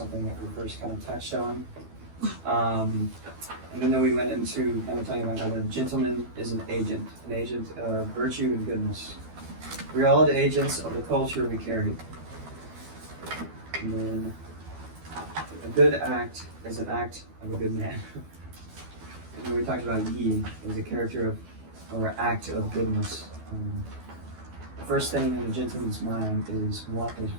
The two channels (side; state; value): left; late; 12 ms